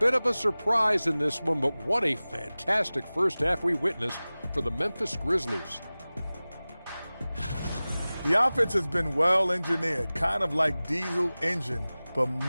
of a surprise in this one, but what a fantastic first half we witnessed for the Memphis Grizzlies. The offense has been well engineered, kind of like diesel engine, but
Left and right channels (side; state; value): both; inverted; correlation -0.98